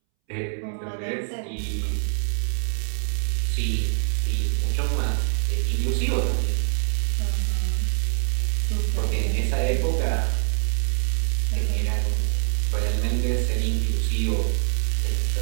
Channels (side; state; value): left; silent; 62 dB below the other